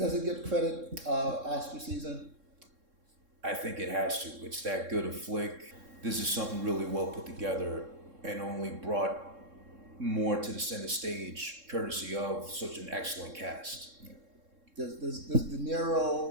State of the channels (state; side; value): late; left; 3.6 ms